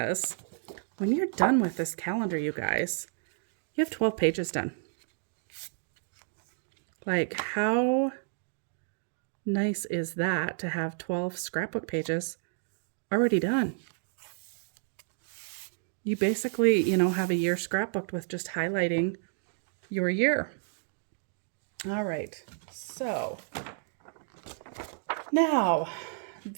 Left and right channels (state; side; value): silent; left; digital silence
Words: when you're done with this calendar, you guys, you have 12 pages done. Like, how nice is that to have 12 scrapbook pages already done? You basically, you know, have a year scrapbooked with just highlighting your year. All right, so now